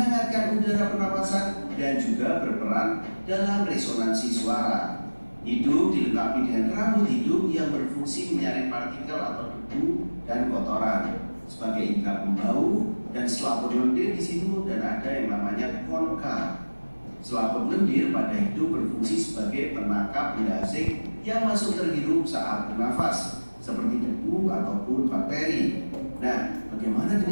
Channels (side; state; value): both; inverted; correlation -1.00